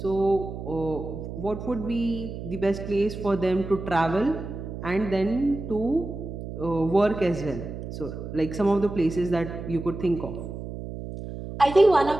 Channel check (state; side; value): noise; right; hum, 9 dB below the sound